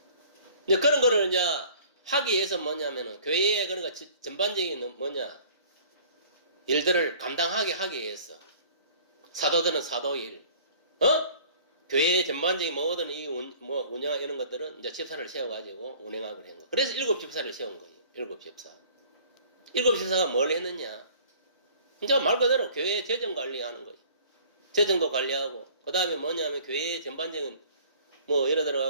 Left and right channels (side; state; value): both; inverted; correlation -0.51